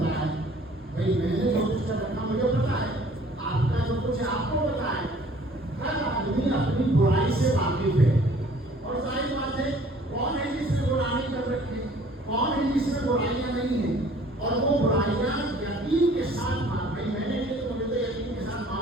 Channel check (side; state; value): both; normal; correlation 0.54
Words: ہے. بھائی میں نے جو کچھ کر رکھا مجھے پتا ہے, آپ کا جو کچھ آپ کو پتا ہے. ہر آدمی اپنی برائی سے واقف ہے. اور ظاہر بات ہے, کون ہے جس نے گناہ نہیں کر رکھی, کون ہے جس میں برائیاں نہیں ہیں, اور وہ برائیاں یقین کے ساتھ بھائی میں نے یہ تو مجھے تو یقین کے ساتھ